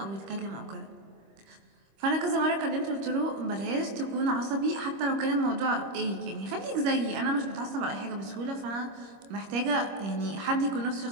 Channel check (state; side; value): late; left; 25 ms